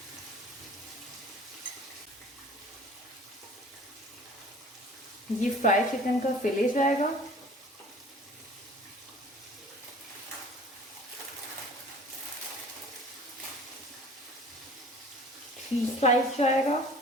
ये फ्राई चिकन का फिले जाएगा। चीज स्लाइस जाएगा।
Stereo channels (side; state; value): both; normal; correlation 0.46